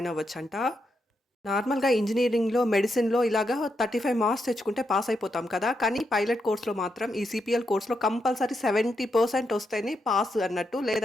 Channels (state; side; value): normal; both; correlation 0.82